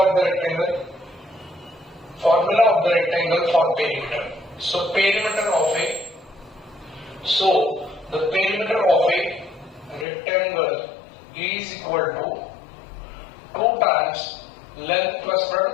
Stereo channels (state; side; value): drops out; right; at 10.1 s